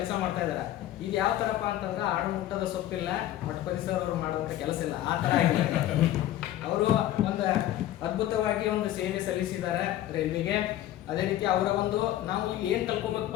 ಮಾಡ್ತಾ ಇದ್ದಾರೆ. ಇದು ಯಾವ ಥರಪ್ಪ ಅಂತಂದ್ರೆ ಆಡು ಮುಟ್ಟದ ಸೊಪ್ಪಿಲ್ಲ, ಮಠಪತಿ ಸರ್ ಅವರು ಮಾಡುವಂಥ ಕೆಲಸ ಇಲ್ಲ, ಆ ಥರ ಆಗಿದೆ. ಅವರು ಒಂದು ಅದ್ಭುತವಾಗಿ ಒಂದು ಸೇವೆ ಸಲ್ಲಿಸಿದ್ದಾರೆ ರೈಲ್ವೆಗೆ. ಅದೇ ರೀತಿ ಅವರ ಒಂದು ನಾವು ಇಲ್ಲಿ ಏನು ಕಲ್ಕೋಬೇಕಪ್ಪ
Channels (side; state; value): right; quieter; 13.4 dB